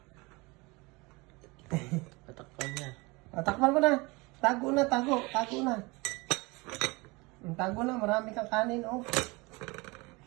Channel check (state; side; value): quieter; left; 25.0 dB